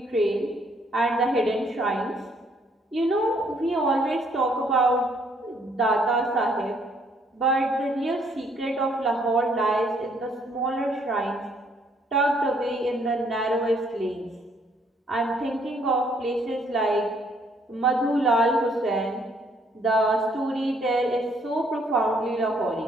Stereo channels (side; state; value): both; normal; correlation 0.67